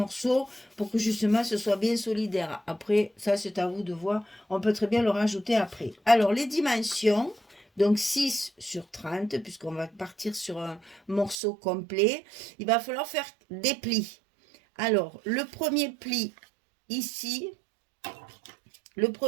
pour que justement ce soit bien solidaire. Après, ça, c'est à vous de voir. On peut très bien le rajouter après. Alors, les dimensions. Donc 6 sur 30, puisqu'on va partir sur un morceau complet. Il va falloir faire des plis. Alors, le premier pli ici,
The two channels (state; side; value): drops out; left; at 11.4 s